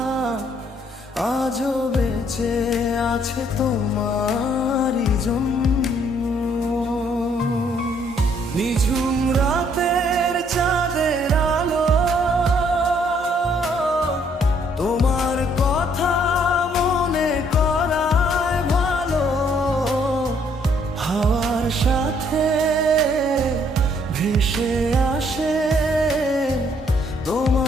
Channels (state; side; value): normal; both; correlation 0.66